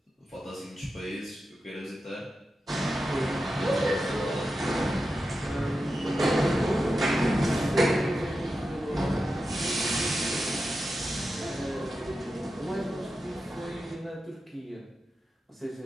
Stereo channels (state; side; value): normal; both; correlation 0.90